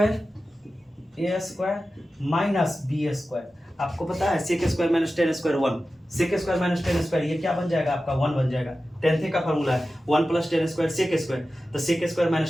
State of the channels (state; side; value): normal; both; correlation 0.94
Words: square minus b square. आपको पता है sec square minus 10 square 1, sec square minus 10 square, ये क्या बन जाएगा आपका 1 बन जाएगा। 10th का फॉर्मूला है 1 प्लस 10 स्क्वायर सेक स्क्वायर, तो सेक स्क्वायर